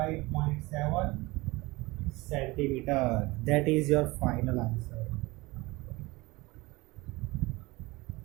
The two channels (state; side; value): quieter; left; 22.2 dB